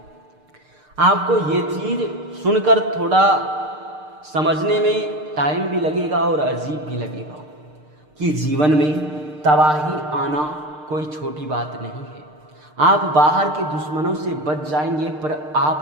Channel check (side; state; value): left; late; 6.6 ms